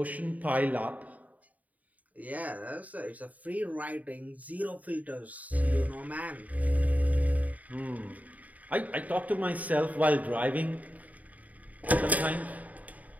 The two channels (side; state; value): left; late; 0.073 ms